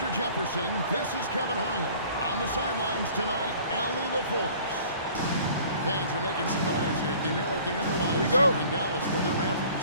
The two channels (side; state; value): both; inverted; correlation -0.49